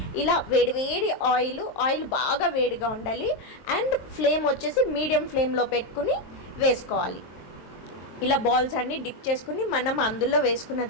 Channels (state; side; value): late; right; 23 ms